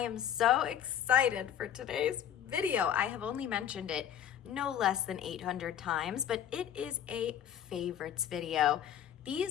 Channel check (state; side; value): quieter; right; 9.9 dB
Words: so excited for today's video. I have only mentioned it no less than 800 times, but it is a favorites video.